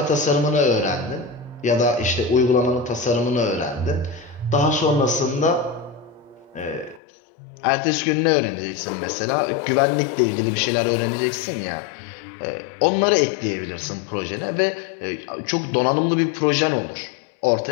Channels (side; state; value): right; drops out; at 7.0 s